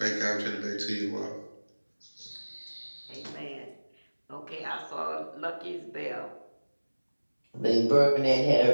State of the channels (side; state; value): both; inverted; correlation -1.00